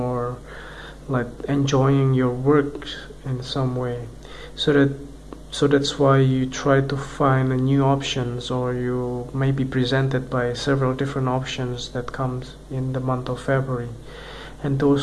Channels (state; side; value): identical; both; correlation 1.00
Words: like enjoying your work in some way. So that's why you try to find new options, or you may be presented by several different options that comes in the month of February, and